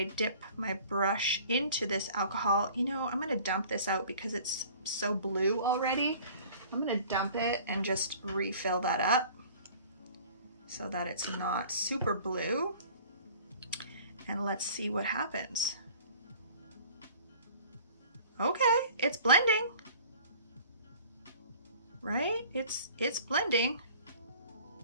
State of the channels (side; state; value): both; inverted; correlation -0.48